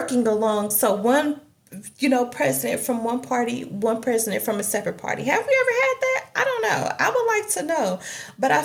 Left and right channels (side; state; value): both; identical; correlation 1.00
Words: along? So one, president from one party, one president from a separate party. Have we ever had that? I don't know. I would like to know. But I